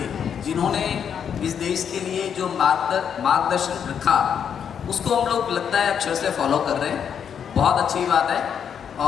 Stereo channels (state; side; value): quieter; right; 7.9 dB